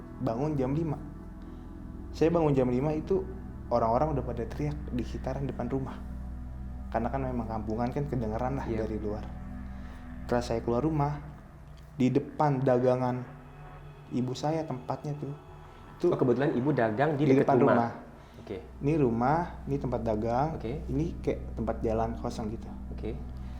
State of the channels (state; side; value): identical; both; correlation 1.00